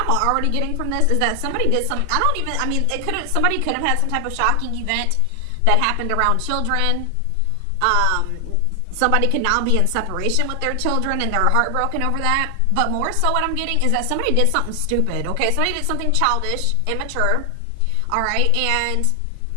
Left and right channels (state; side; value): different; both; correlation 0.00